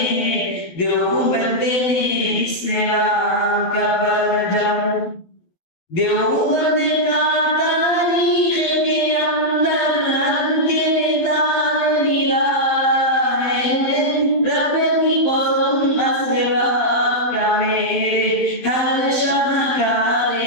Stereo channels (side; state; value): right; late; 12 ms